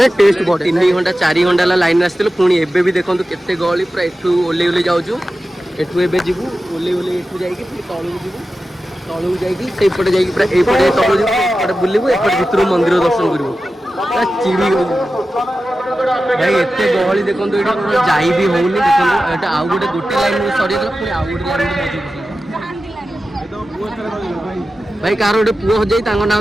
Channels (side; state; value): both; normal; correlation 0.93